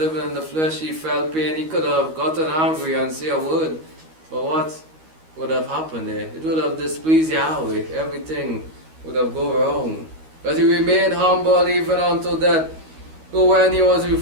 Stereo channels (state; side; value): late; left; 13 ms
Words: in the flesh. He felt pain. He could have gotten angry and say a word. But what would have happened there? It would have displeased Yahweh. Everything would have gone wrong. But he remained humble even until death. So when he was